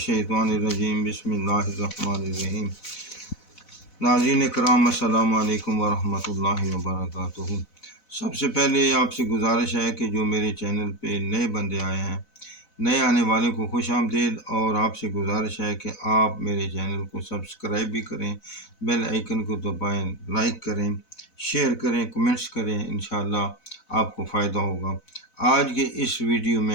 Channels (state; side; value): late; right; 4.0 ms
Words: الرجیم بسم اللہ الرحمن الرحیم۔ ناظرین کرام السلام علیکم ورحمۃ اللہ وبرکاتہ۔ سب سے پہلے آپ سے گزارش ہے کہ جو میرے چینل پہ نئے بندے آئے ہیں، نئے آنے والوں کو خوش آمدید، اور آپ سے گزارش ہے کہ آپ میرے چینل کو سبسکرائب بھی کریں، بیل آئیکن کو دبائیں، لائک کریں، شیئر کریں، کمنٹس کریں، انشاءاللہ آپ کو فائدہ ہوگا۔ آج کے اس ویڈیو